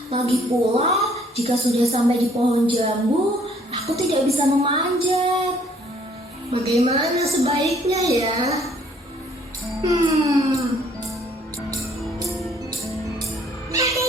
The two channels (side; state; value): both; normal; correlation 0.62